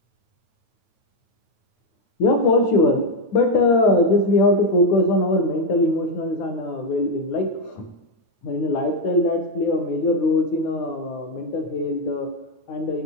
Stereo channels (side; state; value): right; late; 9.3 ms